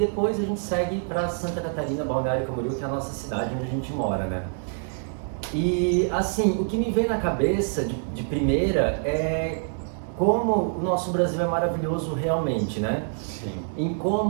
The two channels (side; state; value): left; silent; 61 dB below the other